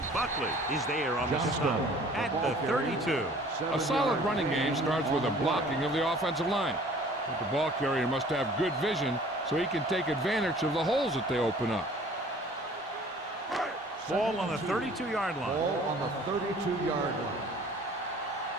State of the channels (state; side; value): normal; both; correlation 0.51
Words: Buckley is there on the stop at the 32. A solid running game starts with a blocking of the offensive line. But the ball carrier must have good vision so he can take advantage of the holes that they open up. Ball on the 32-yard line. Ball on the 32-yard line.